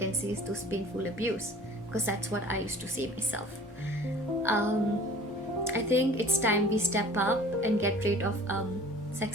see is those painful abuse, because that's what I used to say myself. I think it's time we step up and get rid of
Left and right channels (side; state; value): both; normal; correlation 0.47